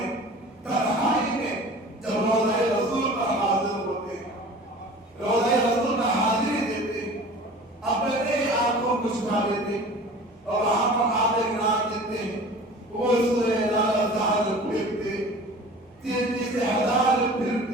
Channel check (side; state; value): both; normal; correlation 0.42